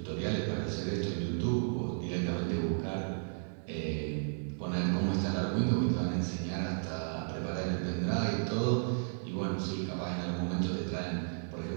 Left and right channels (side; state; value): left; silent; 55 dB below the other